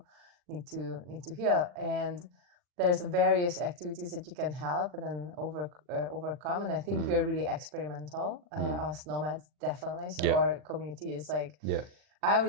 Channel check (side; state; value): left; late; 40 ms